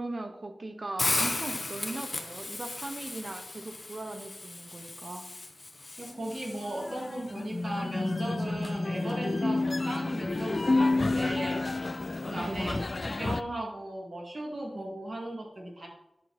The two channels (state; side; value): normal; both; correlation 0.97